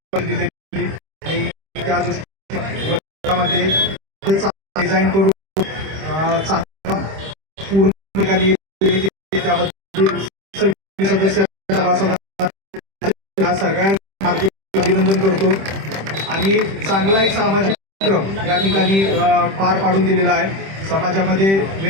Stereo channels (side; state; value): left; late; 26 ms